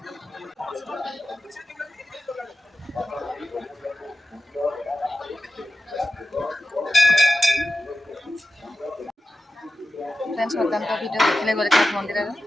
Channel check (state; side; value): normal; both; correlation 0.93